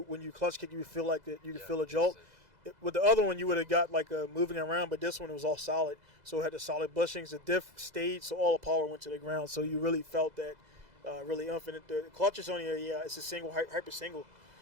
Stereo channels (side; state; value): left; late; 2.0 ms